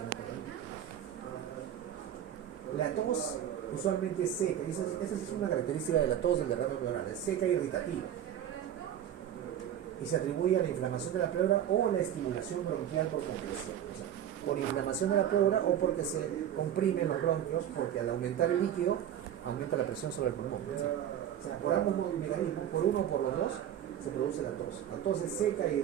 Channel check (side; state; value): left; quieter; 10.3 dB